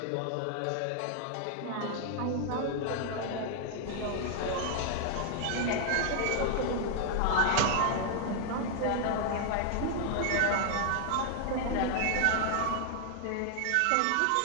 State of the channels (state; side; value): different; both; correlation 0.00